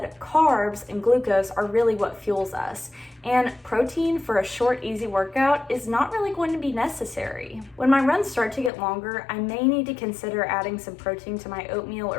carbs and glucose are really what fuels us, and protein for a short, easy workout is not really going to be necessary. When my runs start to get longer, I may need to consider adding some protein to my oatmeal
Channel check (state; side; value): drops out; right; at 8.7 s